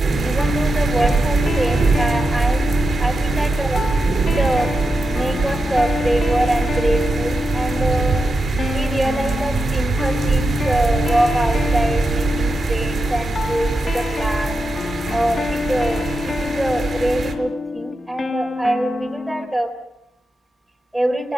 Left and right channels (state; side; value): normal; both; correlation 0.88